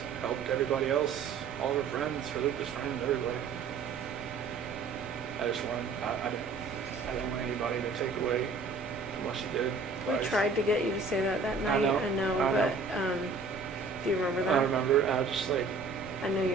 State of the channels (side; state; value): left; quieter; 4.3 dB